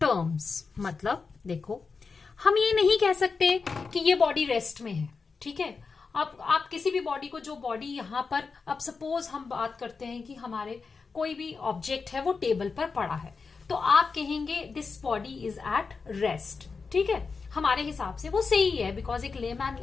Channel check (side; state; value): right; quieter; 4.8 dB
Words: मतलब देखो, हम ये नहीं कह सकते कि ये बॉडी रेस्ट में है. ठीक है, आप किसी भी बॉडी को, जो बॉडी यहां पर, अब सपोज हम बात करते हैं कि हमारे कोई भी ऑब्जेक्ट है वो टेबल पर पड़ा है, तो आप कहेंगे this body is at rest. ठीक है, हमारे हिसाब से वो सही है, बिकॉज एक लेमैन